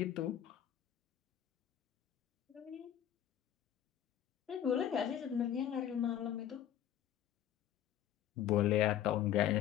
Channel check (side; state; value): right; quieter; 10.8 dB